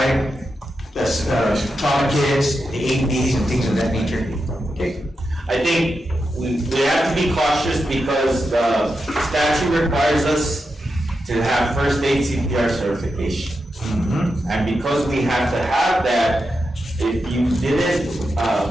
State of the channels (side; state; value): both; normal; correlation 0.88